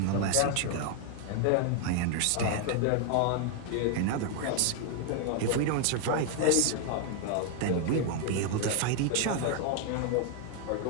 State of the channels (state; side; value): different; both; correlation 0.00